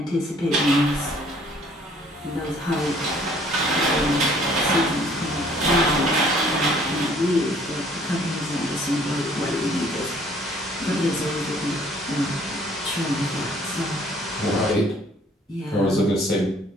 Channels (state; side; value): normal; both; correlation 0.58